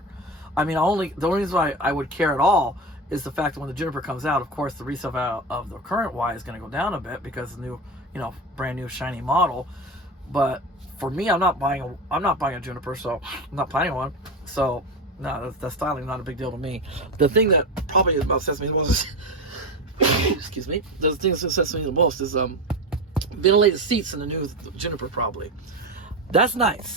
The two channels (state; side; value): normal; both; correlation 0.21